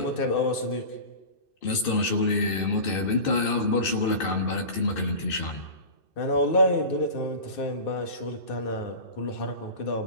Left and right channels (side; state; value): right; late; 2.6 ms